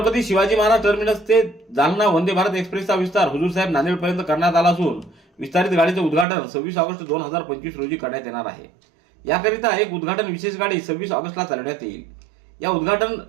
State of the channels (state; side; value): drops out; left; at 6.2 s